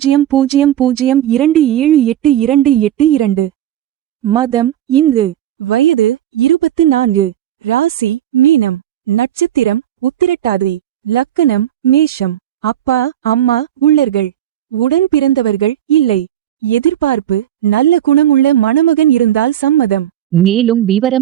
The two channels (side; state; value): left; quieter; 11.6 dB